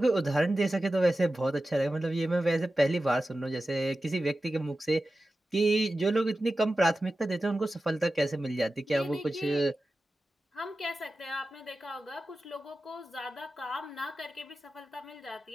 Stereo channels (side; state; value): both; normal; correlation 0.94